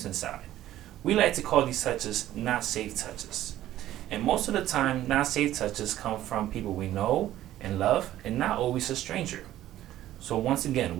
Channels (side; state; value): left; quieter; 13.5 dB